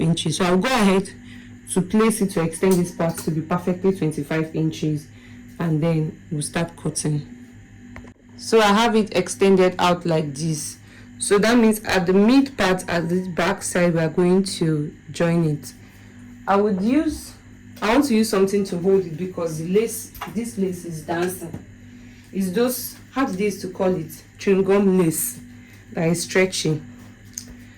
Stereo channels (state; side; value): identical; both; correlation 1.00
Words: So I'll go ahead to place it to extend this part to be perfectly 25 inches, and then we'll start cutting. So I have it extended out like this. So that means at the mid part, at the back side, we are going to join it. I want to use something to hold it because the lace, this lace is dancing. It's those, how do they used to call it, chewing gum lace that is stretching.